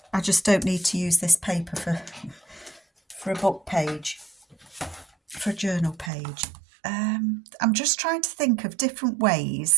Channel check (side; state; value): left; drops out; at 6.1 s